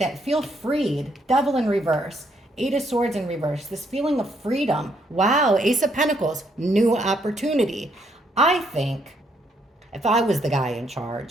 feel freed. Devil in reverse, Eight of Swords in reverse, this feeling of freedom. Wow, Ace of Pentacles, new opportunity. I think if I was the guy in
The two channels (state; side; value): normal; both; correlation 0.72